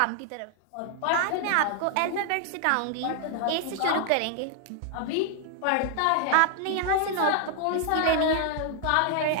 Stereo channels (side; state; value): both; different; correlation 0.00